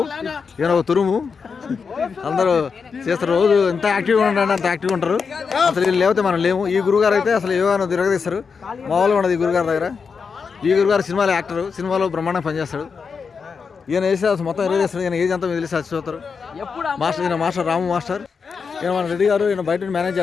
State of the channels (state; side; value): quieter; right; 5.5 dB